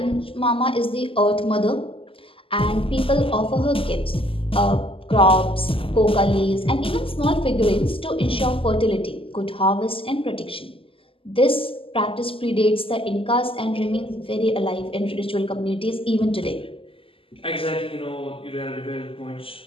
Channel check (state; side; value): late; right; 0.26 ms